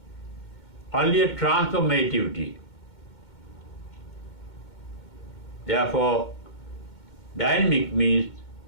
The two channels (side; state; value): right; late; 2.2 ms